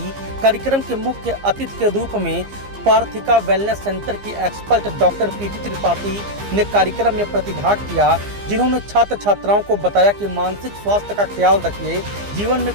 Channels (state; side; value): late; left; 15 ms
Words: कार्यक्रम के मुख्य अतिथि के रूप में पार्थिका वेलनेस सेंटर की एक्सपर्ट डॉक्टर पीटी त्रिपाठी ने कार्यक्रम में प्रतिभाग किया, जिन्होंने छात्र छात्राओं को बताया कि मानसिक स्वास्थ्य का ख्याल रखिए, जीवन